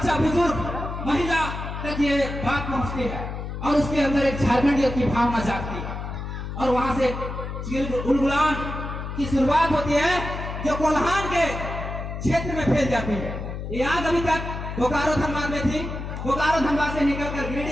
बुजुर्ग, महिला तक ये बात पहुंचती है और उसके अंदर एक झारखंडियत की भावना जागती है। और वहां से उलगुलान की शुरुआत होती है जो कोल्हान के क्षेत्र में फैल जाती है। ये आग अभी तक बोकारो धनबाद में थी, बोकारो धनबाद से निकलकर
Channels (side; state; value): left; noise; hum, 6 dB below the sound